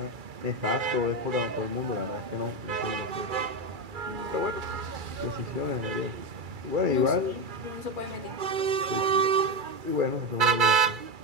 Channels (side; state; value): left; late; 2.3 ms